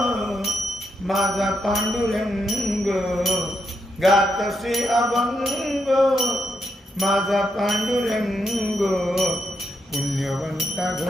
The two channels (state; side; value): normal; both; correlation 0.81